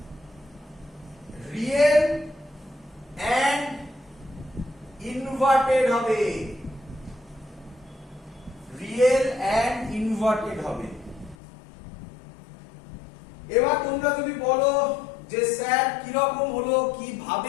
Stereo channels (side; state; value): right; drops out; at 11.4 s